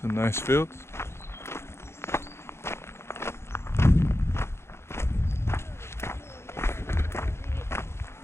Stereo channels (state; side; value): late; right; 0.12 ms